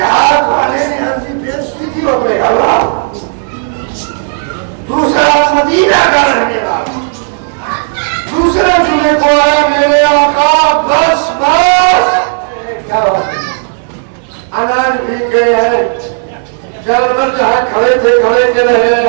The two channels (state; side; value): silent; left; digital silence